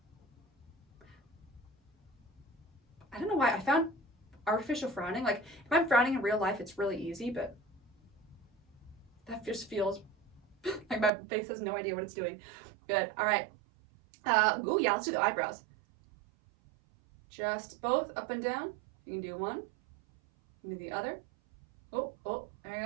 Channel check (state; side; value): drops out; left; at 11.1 s